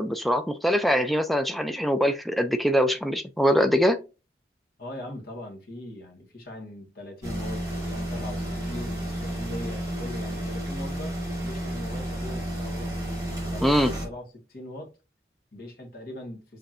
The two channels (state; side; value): normal; both; correlation 0.81